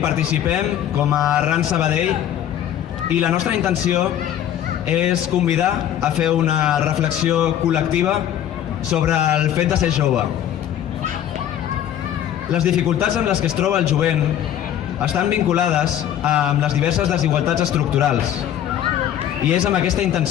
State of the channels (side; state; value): right; quieter; 10.6 dB